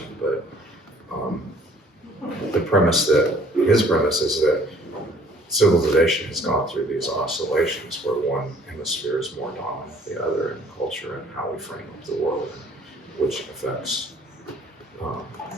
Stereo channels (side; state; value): both; normal; correlation 0.56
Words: but his premise is that civilization has gone through these oscillations where one hemisphere is more dominant than the other in culture and how we frame up the world, which affects